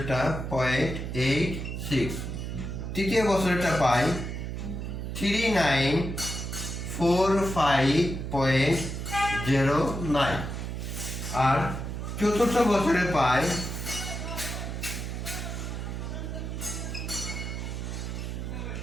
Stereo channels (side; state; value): right; noise; hum, 5 dB below the sound